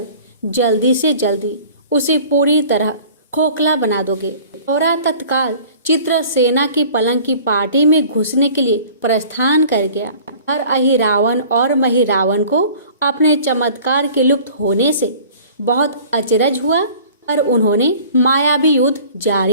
जल्दी से जल्दी उसे पूरी तरह खोखला बना दोगे। और तत्काल चित्रसेना की पलंग की पार्टी में घुसने के लिए प्रस्थान कर गया। और अहिरावण और महिरावण को अपने चमत्कार के लुप्त होने से बहुत अचरज हुआ और उन्होंने मायावी युद्ध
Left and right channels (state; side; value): inverted; both; correlation -0.47